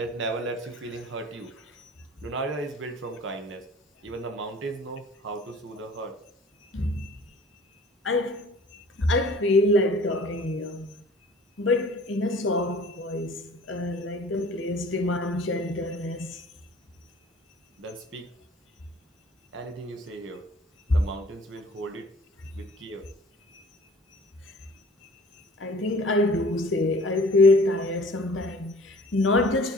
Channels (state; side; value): normal; both; correlation 0.49